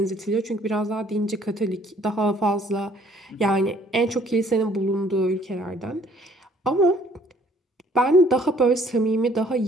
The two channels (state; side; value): normal; both; correlation 0.60